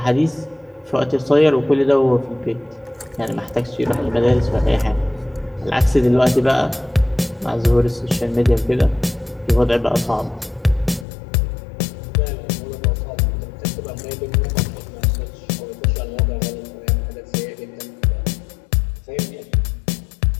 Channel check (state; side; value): drops out; right; at 11.1 s